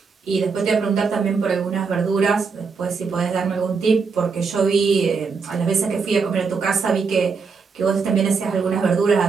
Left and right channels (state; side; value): quieter; left; 5.1 dB